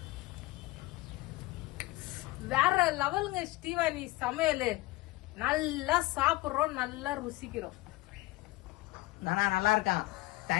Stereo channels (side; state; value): right; quieter; 19.7 dB